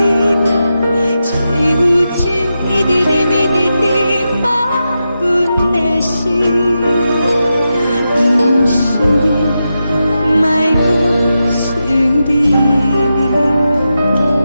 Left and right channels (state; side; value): inverted; both; correlation -0.89